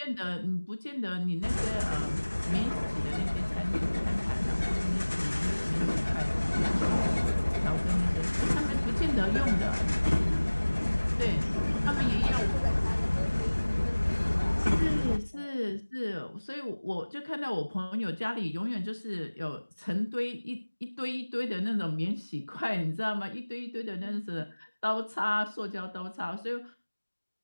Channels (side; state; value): both; inverted; correlation -1.00